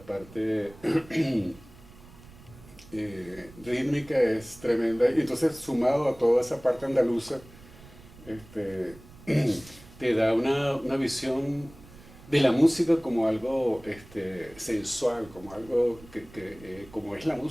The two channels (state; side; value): noise; right; rumble, 21 dB below the sound